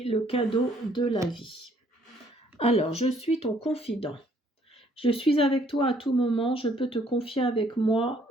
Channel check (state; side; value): normal; both; correlation 0.64